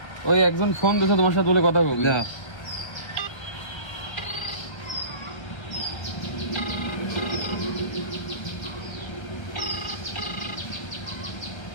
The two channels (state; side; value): late; right; 1.3 ms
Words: ওই একজন ফোন দিয়েছে, তোমার সাথে বলে কথা বলবো। যাও।